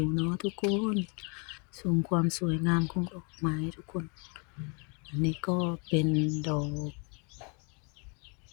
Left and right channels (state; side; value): quieter; right; 35.1 dB